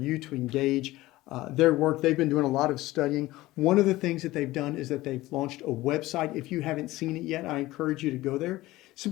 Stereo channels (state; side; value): quieter; right; 17.9 dB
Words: to engage their work. They've been doing a lot of studying. One of the things that they've done is that they've launched a website. If you haven't seen it yet, I encourage you to go there.